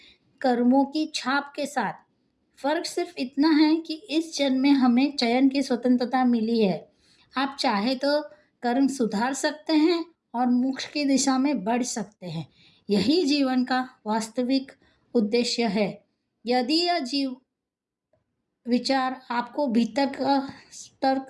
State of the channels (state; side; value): identical; both; correlation 1.00